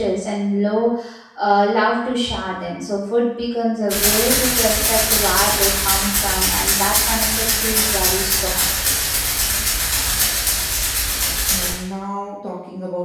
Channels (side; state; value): both; identical; correlation 1.00